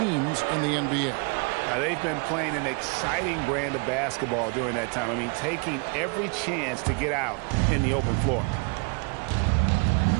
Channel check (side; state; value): left; quieter; 33.5 dB